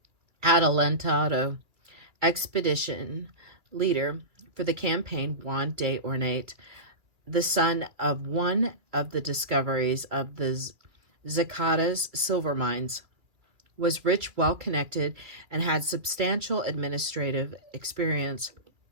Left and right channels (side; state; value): left; late; 2.4 ms